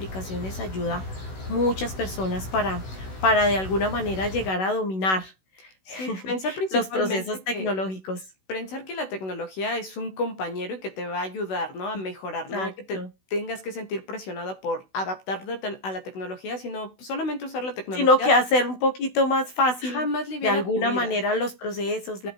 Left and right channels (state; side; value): late; right; 16 ms